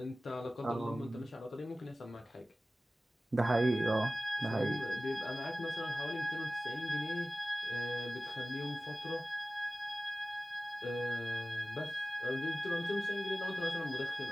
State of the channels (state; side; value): normal; both; correlation 0.96